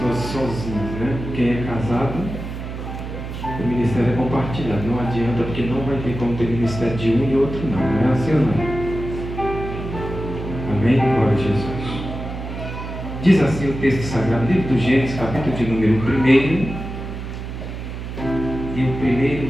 sozinhas, né? Quem é casado, o ministério é compartilhado. Não adianta, porque não vai ter como ter ministério de um e outro não. Não é assim ou não? Amém? Glória a Jesus. Diz assim o texto sagrado, livro do Gênesis, capítulo de número 1. E o primeiro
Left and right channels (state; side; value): noise; right; hum, 8 dB below the sound